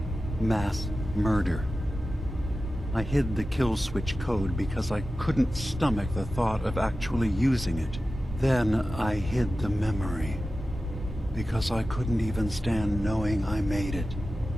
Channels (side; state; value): both; normal; correlation 0.94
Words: Mass murder. I hid the kill switch code because I couldn't stomach the thought of actually using it. Then I hid the memory because I couldn't even stand knowing I made it.